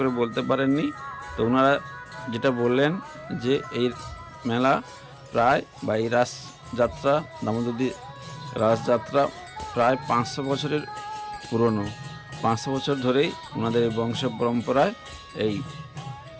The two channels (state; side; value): identical; both; correlation 1.00